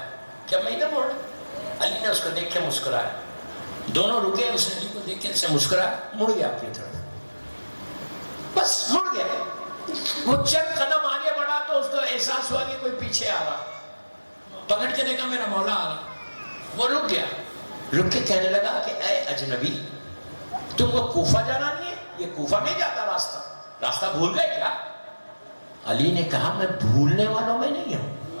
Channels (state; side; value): inverted; both; correlation -1.00